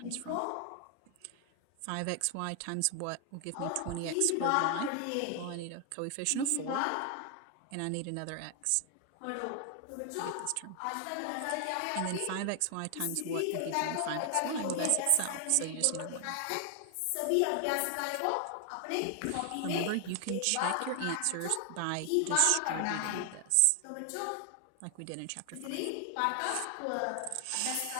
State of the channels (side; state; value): both; different; correlation 0.00